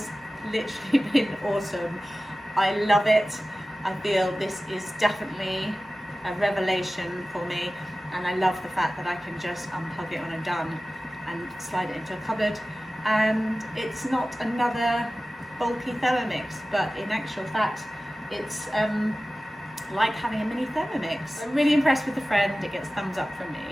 literally been awesome. I love it. I feel this is definitely a revelation for me, and I love the fact that I can just unplug it when I'm done and slide it into a cupboard, and it's not another bulky Thermomix, but in actual fact it's like having a mini Thermomix. I'm really impressed with the friend, it gets thumbs up from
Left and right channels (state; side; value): normal; both; correlation 0.96